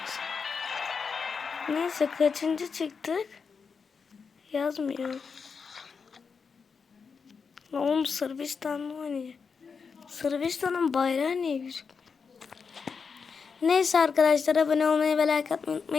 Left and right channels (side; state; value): right; quieter; 5.6 dB